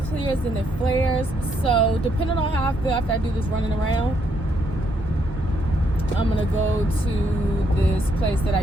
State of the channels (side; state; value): both; normal; correlation 0.74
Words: clears and it flares. So depending on how I feel after I do this running around, I'm gonna go to this place that I